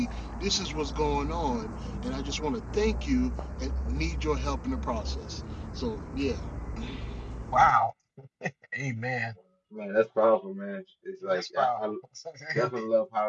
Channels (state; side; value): identical; both; correlation 1.00